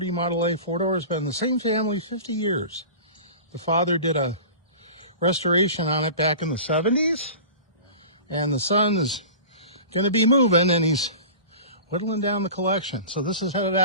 Model A four-door has been in the same family 50 years. The father did a restoration on it back in the 70s, and the son is going to be moving, and he's whittling down the collection. So this is headed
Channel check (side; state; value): both; inverted; correlation -0.36